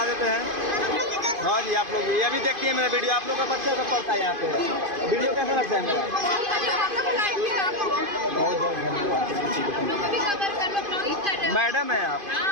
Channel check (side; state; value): left; late; 2.5 ms